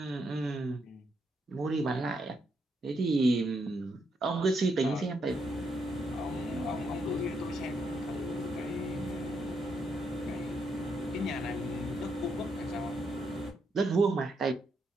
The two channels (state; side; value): normal; both; correlation 0.78